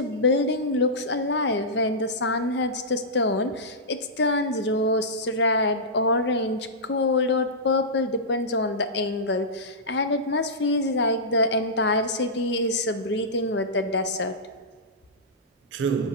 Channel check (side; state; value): both; normal; correlation -0.15